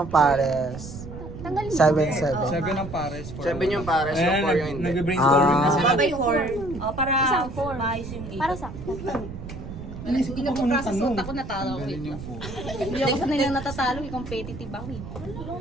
pares. Tanggalin. 7. seven ang pares. Sabi niyo pares yung for yung hindi. Nag-brainstorming na sila. Sabay 4. Para Isang 4. maayos yung 8. Para sa... Inisip ko pa kung unang tanong. Ako natalo ko. Hindi ako sanay lang natatalo. Competitive ako eh.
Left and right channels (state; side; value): noise; right; rumble, 11 dB below the sound